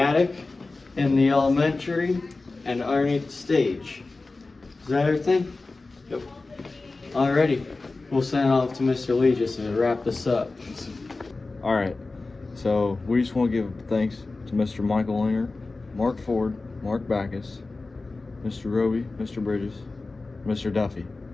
in the elementary and underneath the stage. Is that everything? Yep. Alrighty. We'll send it off to Mr. Lee just to wrap this up. All right. So we just want to give thanks to Mr. Michael Linger, Mark Ford, Mark Backus, Mr. Roby, Mr. Bridges, Mr. Duffy,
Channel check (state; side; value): quieter; right; 3.5 dB